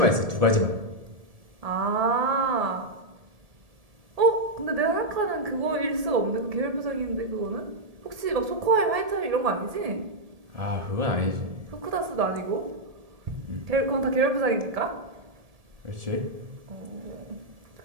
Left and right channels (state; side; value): late; left; 1.7 ms